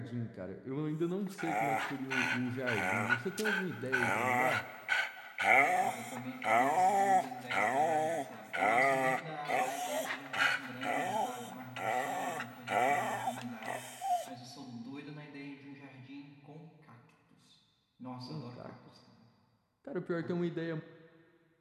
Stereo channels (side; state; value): both; identical; correlation 1.00